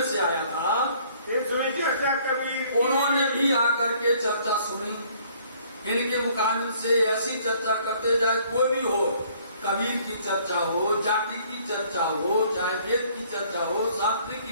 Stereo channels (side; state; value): both; inverted; correlation -0.60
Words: से आया था। फिर सुनी चर्चा कबीर। उन्होंने भी आकर के चर्चा सुनी। इनके मुकाबले से ऐसी चर्चा करते जाए, कोई भी हो, कबीर की चर्चा हो, जाति की चर्चा हो, चाहे वेद की चर्चा हो, शास्त्र